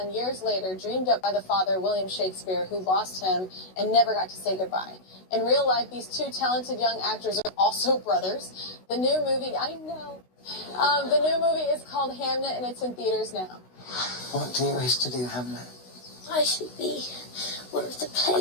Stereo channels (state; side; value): late; right; 16 ms